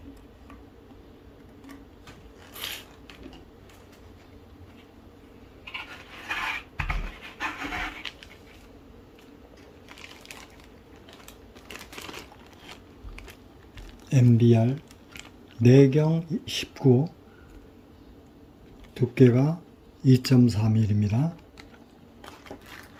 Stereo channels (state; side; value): identical; both; correlation 1.00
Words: MBR 내경 19 두께가 2.4mm입니다.